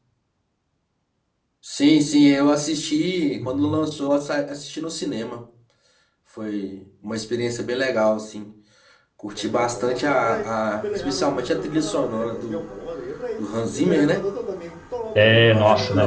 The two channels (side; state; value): both; identical; correlation 1.00